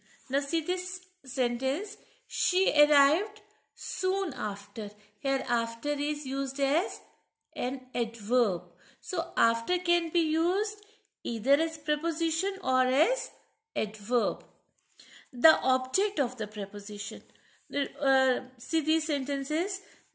Now see this sentence. She arrived soon after. Here after is used as an adverb. So after can be used either as preposition or as adverb. The object of the preposition. See these sentences.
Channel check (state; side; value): identical; both; correlation 1.00